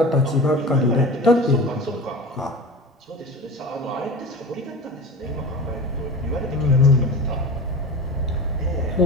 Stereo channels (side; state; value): both; normal; correlation 0.33